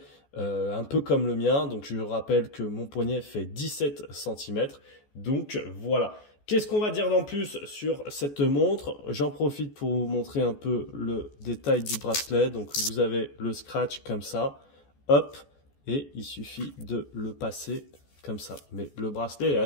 un peu comme le mien. Donc je rappelle que mon poignet fait 17 cm. Donc voilà. Qu'est-ce qu'on va dire d'en plus sur cette montre? J'en profite pour vous montrer un peu le détail du bracelet. Donc vous avez le scratch comme ça, hop, et il suffit de le passer comme ça. Mais le bracelet est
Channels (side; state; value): right; late; 14 ms